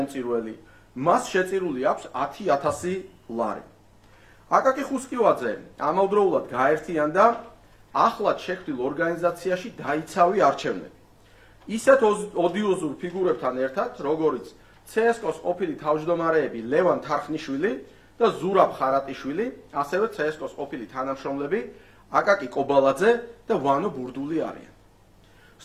მას შეწირული აქვს 10,000 ლარი. აკაკი ხუსკივაძე ამავდროულად გაერთიანდა ახლად შექმნილ ორგანიზაციაში დაიცავი არჩევნები. ისეთ ოდიოზურ ფიგურებთან ერთად, როგორიც CSKO-s ყოფილი თავმჯდომარეები ლევან თარხნიშვილი და ზურაბ ხარატიშვილი, ასევე CSKO-s ყოფილი თანამშრომლები აკაკი კობალაძე და ვანო ბურდული არიან.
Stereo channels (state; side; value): identical; both; correlation 1.00